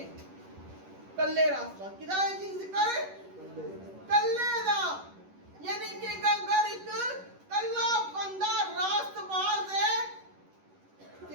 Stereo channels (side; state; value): left; late; 11 ms